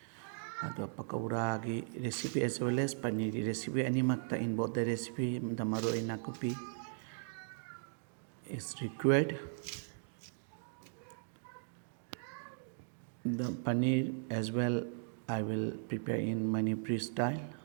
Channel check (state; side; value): silent; left; digital silence